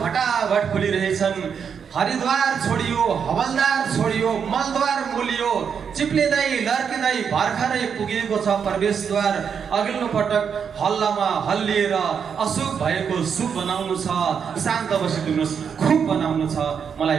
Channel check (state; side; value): quieter; left; 7.0 dB